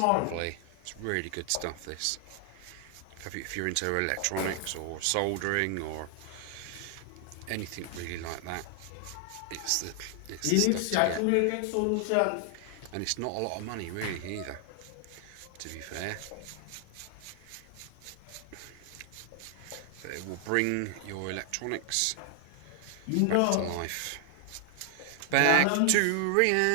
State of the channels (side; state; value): both; different; correlation 0.00